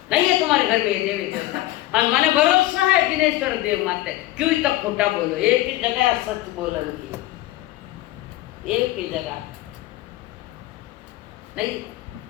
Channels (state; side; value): quieter; right; 16.3 dB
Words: नहीं है तुम्हारे घर में ये देवी देवता। और माने भरोसा है जिनेश्वर देव माते, क्यों तक खोटा बोलो, एक ही जगह सच बोलन की, एक ही जगह नहीं।